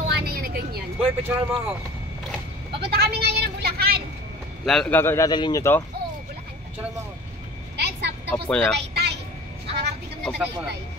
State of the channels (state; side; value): normal; both; correlation 0.42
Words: na yan na ganyan. Boy, picturean mo ako. Papunta kami ngayon ng Bulacan. Dadalhin nyo to? Oo, Bulacan. Picturean mo ako. Dahil sa tapos Opo na. Tagaytay. Nakakarating kami ng Opo na. Tagaytay.